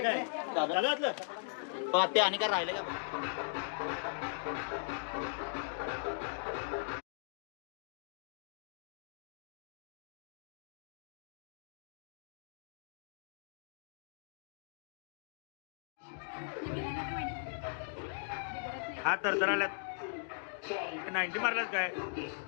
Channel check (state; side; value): silent; right; digital silence